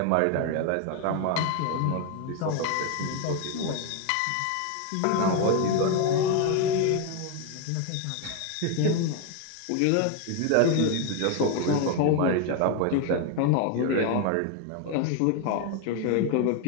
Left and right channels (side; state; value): both; different; correlation 0.01